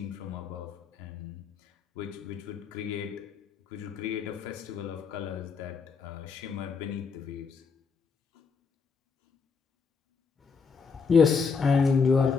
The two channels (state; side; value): quieter; right; 5.4 dB